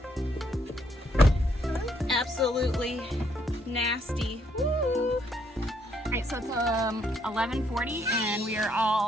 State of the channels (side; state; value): both; normal; correlation 0.71